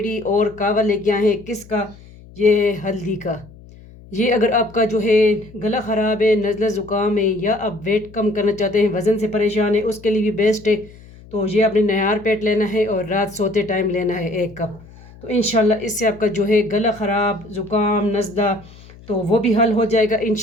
और कावा लेके आए हैं। किसका? ये है हल्दी का। ये अगर आपका जो है गला ख़राब है, नज़ला ज़ुकाम है, या आप वेट कम करना चाहते हैं, वज़न से परेशान है, उसके लिए भी बेस्ट है। तो ये आपने नयार पेट लेना है और रात सोते टाइम लेना है 1 कप। तो इंशाल्लाह इससे आपका जो है गला ख़राब, ज़ुकाम, नज़ला तो वो भी हल हो जाएगा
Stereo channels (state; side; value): noise; left; hum, 21 dB below the sound